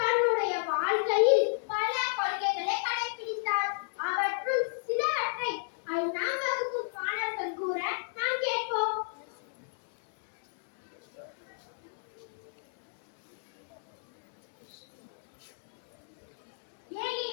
தன்னுடைய வாழ்க்கையில் பல கொள்கைகளை கடைபிடித்தார். அவற்றுள் சிலவற்றை 5ஆம் வகுப்பு மாணவர்கள் கூற நாம் கேட்போம்.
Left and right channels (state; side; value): silent; right; digital silence